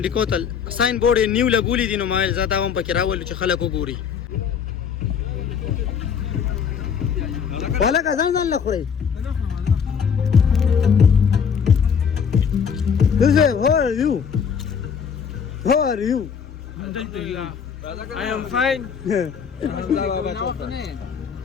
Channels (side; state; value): right; quieter; 6.9 dB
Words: کوتل ساین بورډ یې نیو لګولي دي نو مایل زه دا هم پکې راولو چې خلک وګوري هلکه ځان ځان له خورئ How are you? How are you? I am fine.